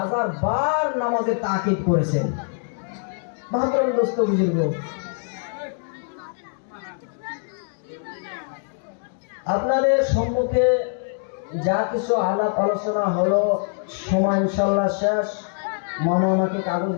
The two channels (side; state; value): right; silent; 63 dB below the other